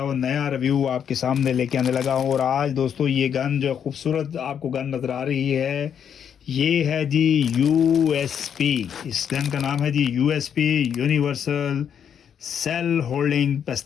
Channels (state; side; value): quieter; right; 8.3 dB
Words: वो नया रिव्यू आपके सामने लेके आने लगा हूँ। और आज दोस्तों ये गन जो खूबसूरत आपको गन नज़र आ रही है, ये है जी यूएसपी। इस गन का नाम है जी यूएसपी, यूनिवर्सल सेल होल्डिंग